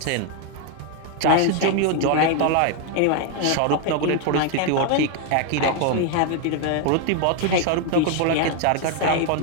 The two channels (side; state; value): both; different; correlation 0.01